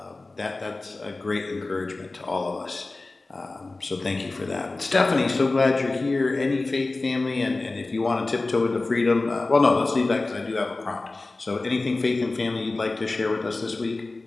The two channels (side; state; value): right; quieter; 3.3 dB